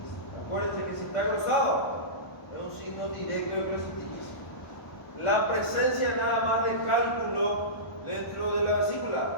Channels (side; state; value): right; late; 1.1 ms